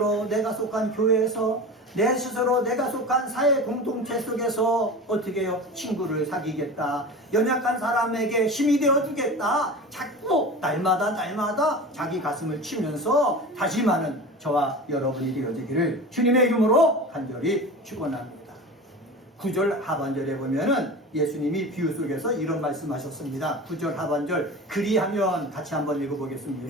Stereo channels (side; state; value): both; normal; correlation 0.32